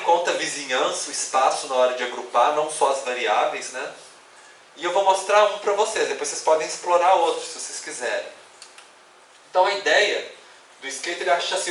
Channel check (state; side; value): identical; both; correlation 1.00